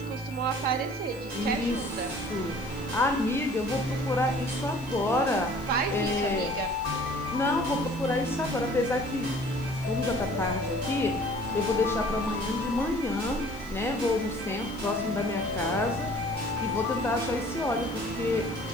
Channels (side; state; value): left; noise; hiss, 25 dB below the sound